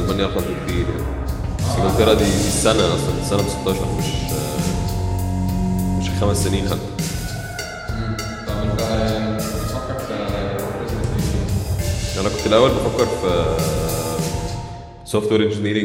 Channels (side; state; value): both; identical; correlation 1.00